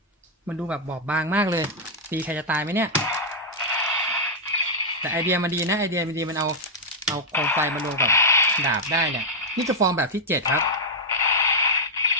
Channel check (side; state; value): both; normal; correlation -0.03